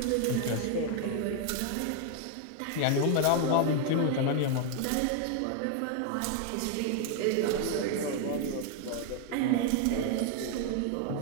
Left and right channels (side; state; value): both; different; correlation 0.00